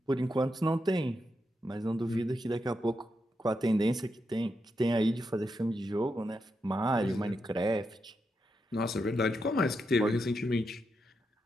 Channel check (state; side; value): normal; both; correlation 0.84